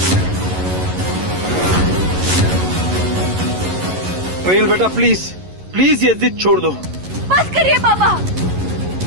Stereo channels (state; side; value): late; left; 11 ms